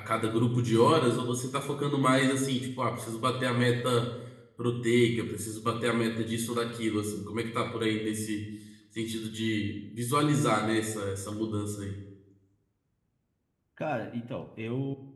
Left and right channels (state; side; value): identical; both; correlation 1.00